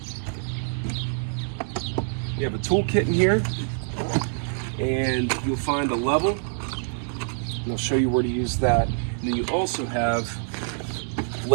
You have a toolkit in here, and you'll find a level, and I'll show you where to use that. And then you also have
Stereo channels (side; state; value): left; silent; digital silence